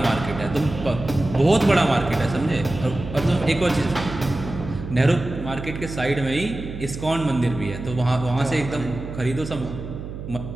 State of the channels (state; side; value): noise; right; hum, 9 dB below the sound